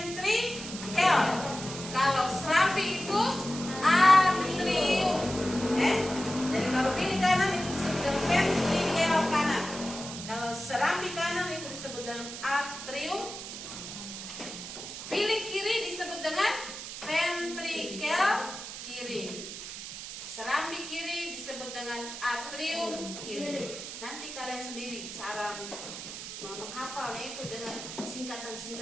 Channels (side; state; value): right; noise; hiss, 9 dB below the sound